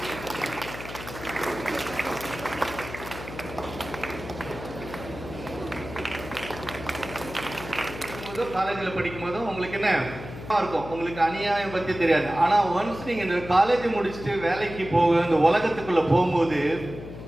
காலேஜில் படிக்கும்போது உங்களுக்கு என்ன இருக்கும், உங்களுக்கு அநியாயம் பற்றி தெரியாது. ஆனால் ஒன்ஸ் நீங்கள் இந்த காலேஜ் முடிச்சுட்டு வேலைக்கு இந்த உலகத்துக்குள்ளே போகும்போது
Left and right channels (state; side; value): noise; left; hum, 12 dB below the sound